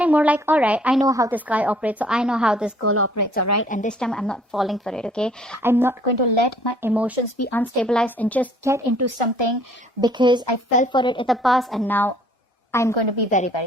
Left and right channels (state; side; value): normal; both; correlation 0.58